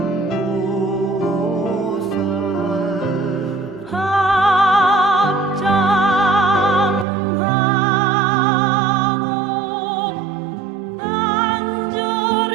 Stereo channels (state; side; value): drops out; left; at 7.1 s